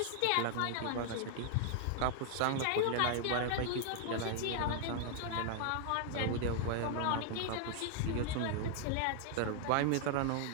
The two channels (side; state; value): both; different; correlation 0.00